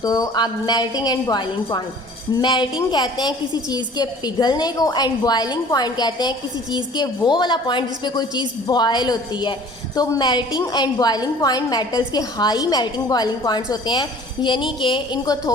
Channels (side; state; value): both; normal; correlation 0.49